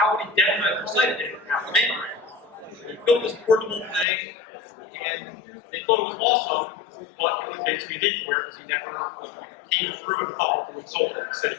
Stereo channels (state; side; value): drops out; right; at 4.0 s